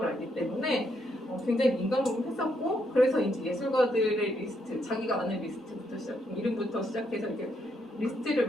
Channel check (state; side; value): normal; both; correlation 0.76